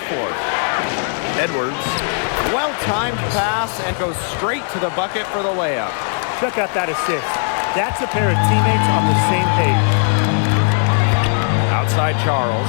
Edwards, well-timed pass and goes straight to the bucket for the layup. Check out that assist. That's a pair of teammates on the same page. Outside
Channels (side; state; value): right; silent; digital silence